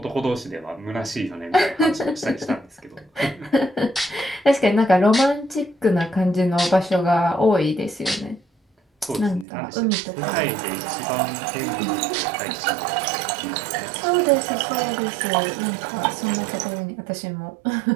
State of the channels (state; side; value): drops out; left; at 9.5 s